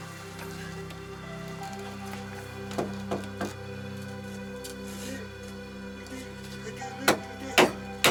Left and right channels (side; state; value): both; identical; correlation 1.00